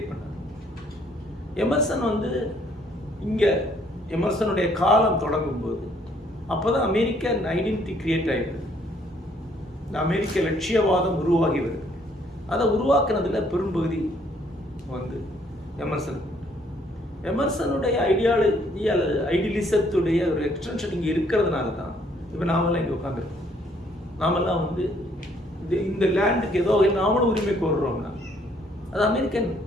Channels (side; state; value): both; normal; correlation 0.65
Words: பண்ணார். எமர்சன் இங்கே எமர்சனுடைய காலம் தொடங்கும்போது அப்போ தான் அமெரிக்கன் ஐடென்டிட்டி கிரியேட் ஆகிடுது, இந்த அமெரிக்க லட்சியவாதம் உருவாகி வருது. அதை உருவாக்குனதில் பெரும்பகுதி எமர்சனுடைய ஐடியாலஜி அல்லது ஐடியலிசத்துடைய ஒரு எக்ஸ்டென்ஷன் இங்கே இருக்கிறதுனால தான் இப்போ நாமெல்லாம் இங்கே உட்காந்துருக்கோம். நாமெல்லாம் இந்த லேண்டுக்கு ஏதோ நாமளும் உரிமை கோருறோம்னா அது அமெரிக்கன்